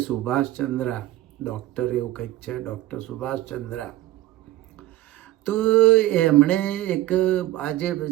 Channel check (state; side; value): quieter; left; 15.4 dB